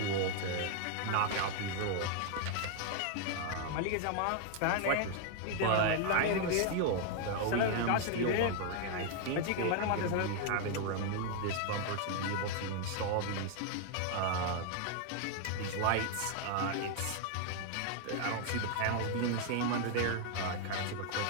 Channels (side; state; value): both; different; correlation 0.00